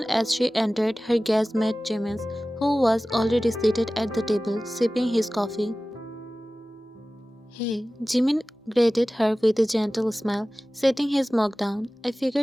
as she entered, her gaze met Jimin's, who was already seated at the table, sipping his coffee. Hey, Jimin greeted her with a gentle smile, setting his mug down. I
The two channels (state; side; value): normal; both; correlation 0.97